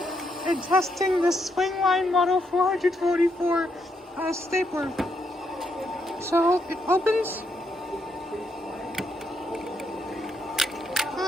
and testing the Swingline Model 444 stapler. So it opens.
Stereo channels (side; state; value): both; normal; correlation 0.78